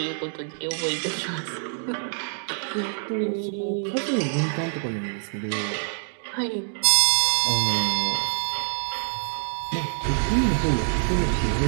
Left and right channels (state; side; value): silent; left; digital silence